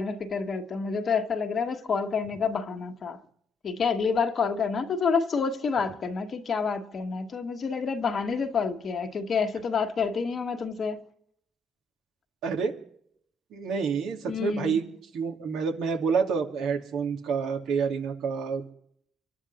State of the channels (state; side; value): normal; both; correlation 0.69